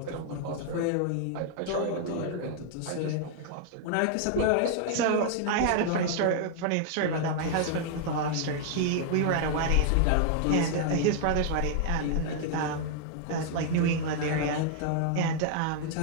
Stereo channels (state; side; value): different; both; correlation 0.00